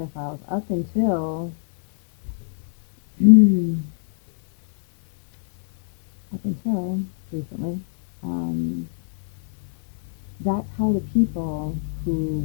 up until up until recently, um, that's how the people who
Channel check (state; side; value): silent; right; 58 dB below the other